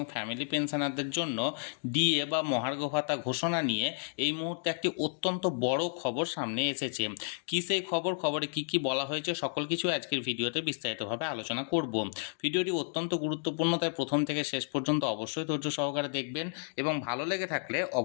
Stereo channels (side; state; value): right; silent; digital silence